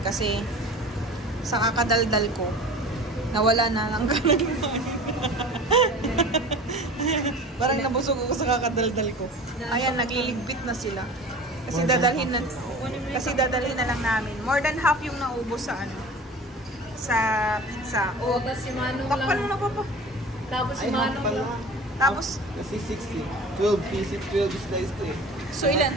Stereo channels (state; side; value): normal; both; correlation 0.39